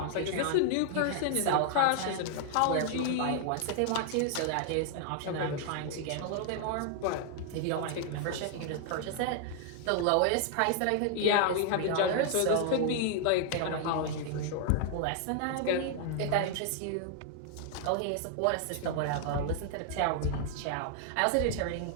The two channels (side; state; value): both; different; correlation 0.00